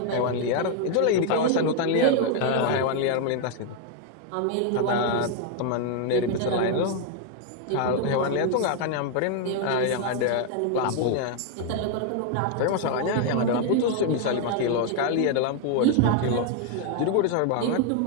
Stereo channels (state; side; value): different; both; correlation 0.00